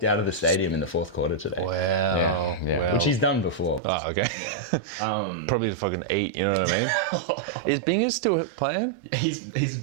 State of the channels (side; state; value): left; drops out; at 3.8 s